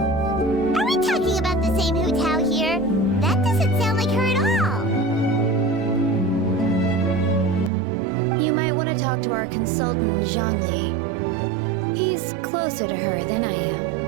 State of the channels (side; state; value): left; drops out; at 7.7 s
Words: Are we talking about the same Hu Tao here? That doesn't sound like her at all. You might want to talk to our consultant, Zhang Li. He's closer to her than I